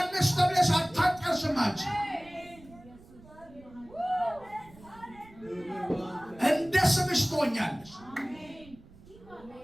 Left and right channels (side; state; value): right; noise; rumble, 23 dB below the sound